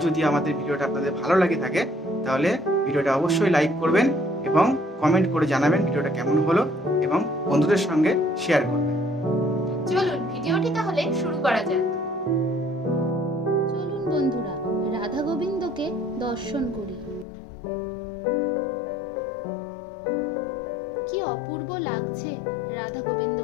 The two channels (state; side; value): drops out; right; at 17.2 s